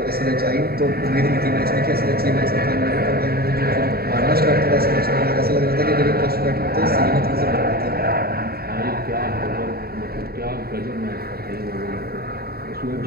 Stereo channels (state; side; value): late; left; 0.45 ms